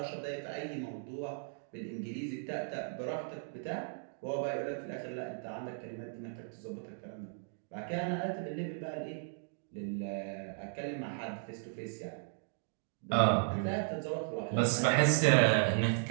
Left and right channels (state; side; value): silent; left; digital silence